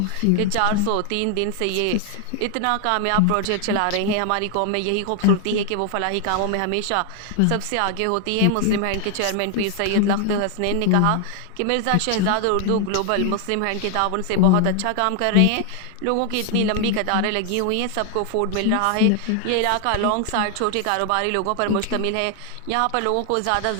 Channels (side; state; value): both; different; correlation 0.00